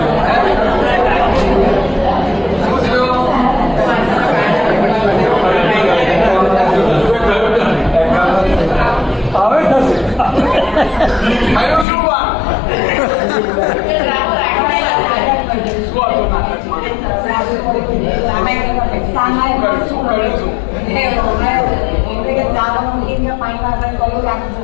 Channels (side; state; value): right; drops out; at 11.9 s